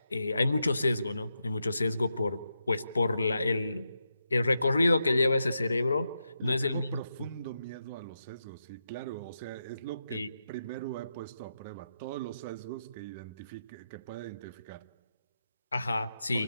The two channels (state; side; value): inverted; both; correlation -0.86